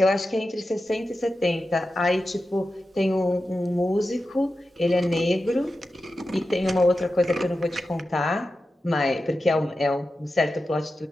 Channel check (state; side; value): normal; both; correlation 0.92